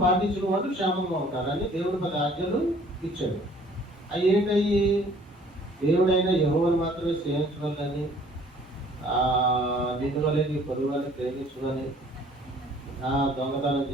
పాటించిన వాళ్ళు క్షేమంగా ఉంటారని దేవుడు 10 ఆజ్ఞలు ఇచ్చాడు. అవి ఏంటయ్యి? దేవుడైనా యెహోవాను మాత్రమే సేవించవాలని, నిన్ను వలె నీ పొరుగు వాళ్ళని ప్రేమించుకొని, దొంగతనం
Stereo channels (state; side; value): normal; both; correlation 0.56